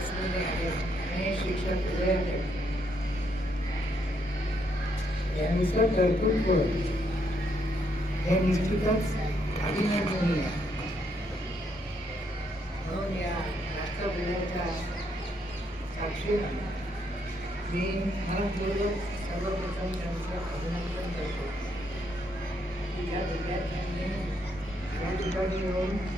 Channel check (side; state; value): both; normal; correlation 0.74